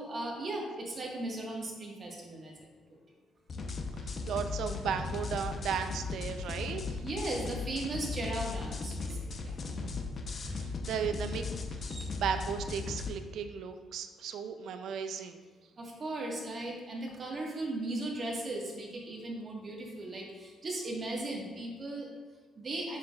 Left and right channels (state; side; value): normal; both; correlation 0.71